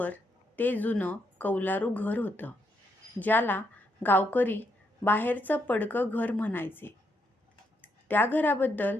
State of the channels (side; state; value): both; normal; correlation 0.77